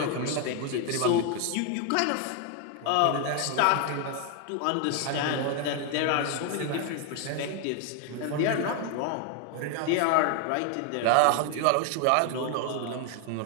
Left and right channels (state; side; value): different; both; correlation 0.00